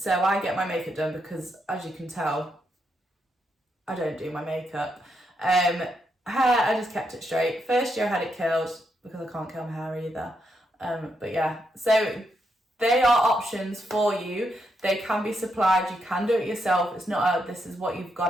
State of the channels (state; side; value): normal; both; correlation 0.80